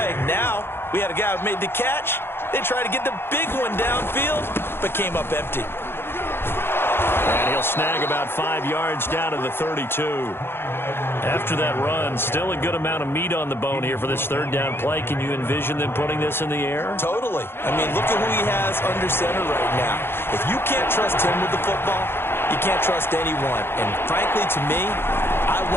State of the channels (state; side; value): late; right; 0.11 ms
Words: Now, we had a guy who made the catch. They tried to get the big one downfield, but came up empty. And he'll snag about 5 yards down to the 32. After that run, still a good amount of meat on the bone here for this 3rd down play. Can you envision them putting this in the air? Totally. I mean, look at who he has under center right now. If you can't trust him with the football, you can't trust anyone. And frankly, to me, I